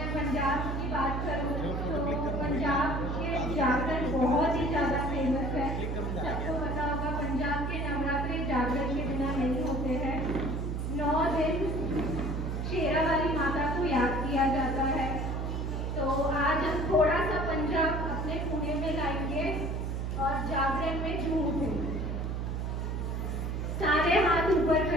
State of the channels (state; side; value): noise; right; hum, 2 dB below the sound